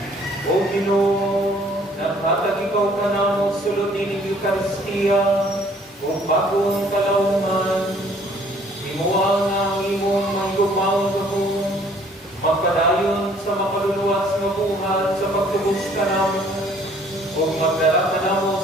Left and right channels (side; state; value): both; normal; correlation 0.59